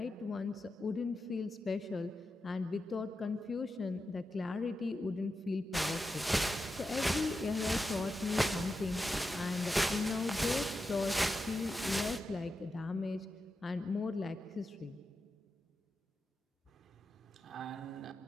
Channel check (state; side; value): normal; both; correlation 0.89